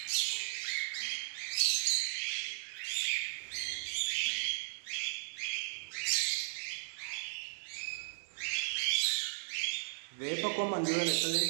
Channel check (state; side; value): silent; left; 54 dB below the other